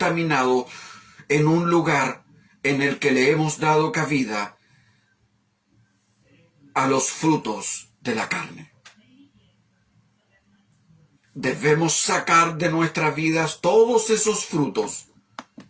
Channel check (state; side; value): identical; both; correlation 1.00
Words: en un lugar en el que le hemos dado cabida a los frutos de la carne. Debemos sacar de nuestras vidas todos esos frutos